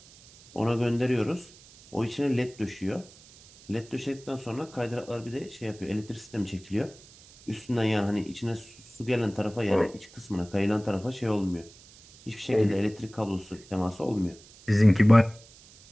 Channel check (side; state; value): right; noise; hiss, 23 dB below the sound